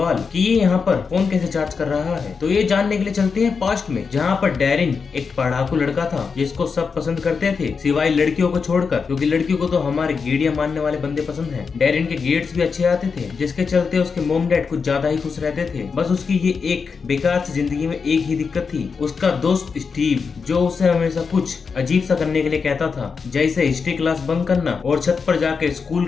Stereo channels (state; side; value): quieter; right; 5.4 dB